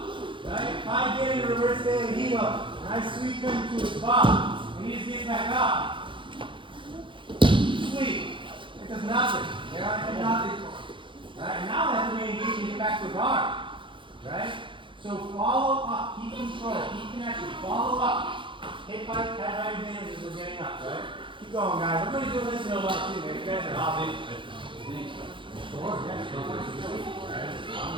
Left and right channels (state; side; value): late; left; 0.24 ms